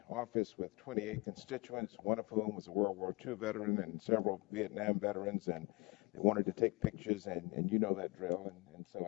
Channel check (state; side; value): quieter; right; 26.3 dB